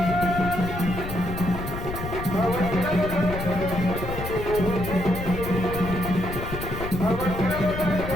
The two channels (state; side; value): noise; left; rumble, 7 dB below the sound